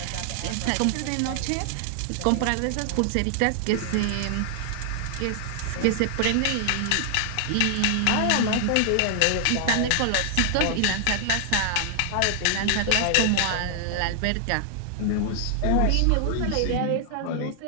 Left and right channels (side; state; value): both; different; correlation 0.00